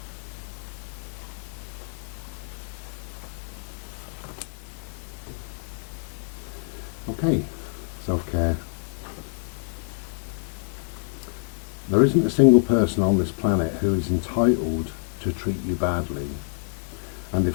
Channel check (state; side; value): silent; right; digital silence